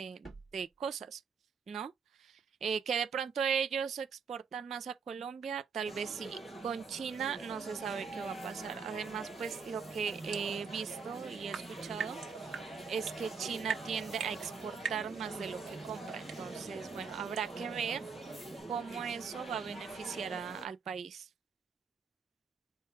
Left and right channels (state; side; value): quieter; left; 5.8 dB